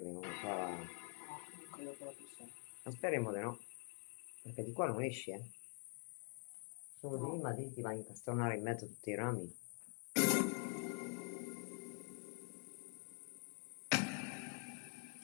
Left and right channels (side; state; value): right; quieter; 39.7 dB